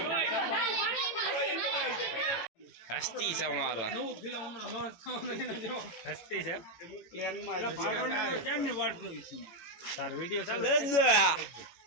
હસ્તી છે અમારા હસ્તી છે તાર વિડિયો ચાલે દાદા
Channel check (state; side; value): late; right; 18 ms